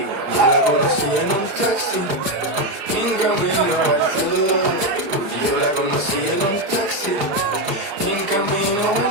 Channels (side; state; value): left; late; 34 ms